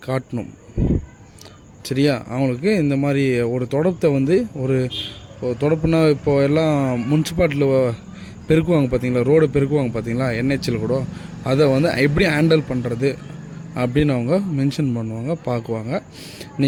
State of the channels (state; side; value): identical; both; correlation 1.00